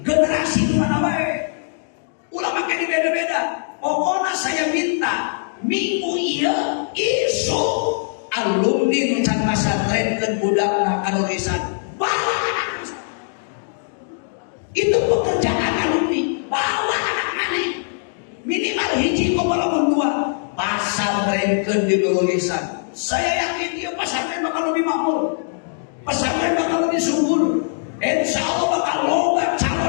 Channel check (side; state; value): right; silent; digital silence